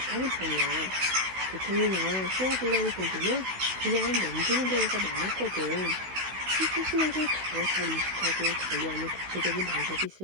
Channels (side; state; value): left; late; 16 ms